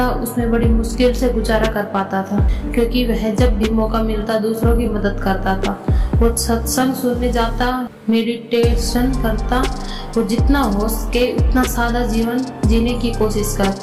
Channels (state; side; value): identical; both; correlation 1.00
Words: उसमें बड़ी मुश्किल से गुजारा कर पाता था, क्योंकि वह जब भी मौका मिलता दूसरों की मदद करता था। वो सत्संग सुनने जाता, मेडिटेशन करता, वो जितना हो सके उतना सादा जीवन जीने की कोशिश